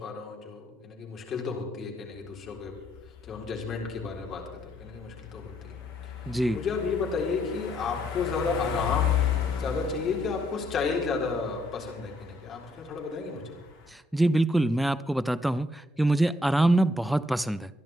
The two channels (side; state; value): both; normal; correlation 0.71